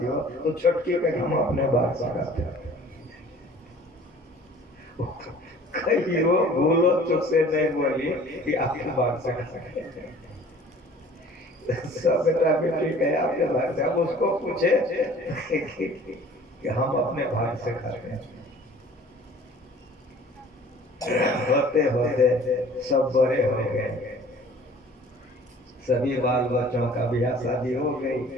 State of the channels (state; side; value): normal; both; correlation 0.49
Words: हो, तो छोटकी कहे हम अपने भाग से खाते हैं। कहीं वो भूलो चुप से नहीं बोली कि आपके भाग से खाते हैं। सब बेटा बेटी कहे आपके भाग से। अब उसको पूछे कि हम अपने भाग से खाते हैं। होते होते सब बड़े हो गए, सभी बाल बच्चों का ब्याह शादी हो गई।